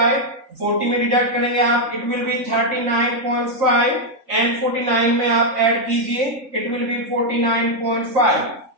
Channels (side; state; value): left; late; 3.9 ms